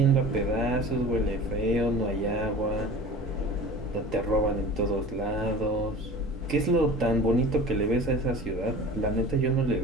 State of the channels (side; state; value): both; normal; correlation 0.39